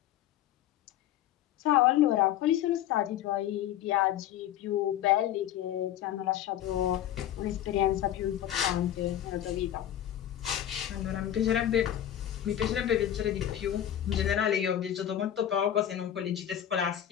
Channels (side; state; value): right; quieter; 11.3 dB